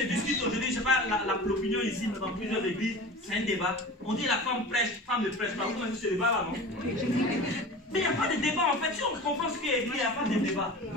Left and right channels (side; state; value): both; normal; correlation 0.35